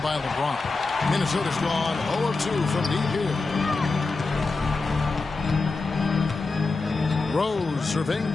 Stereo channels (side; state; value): right; quieter; 3.8 dB